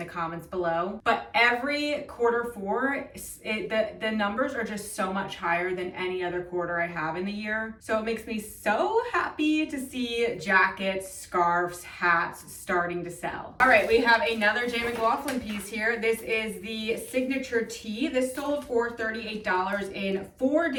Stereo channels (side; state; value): both; identical; correlation 1.00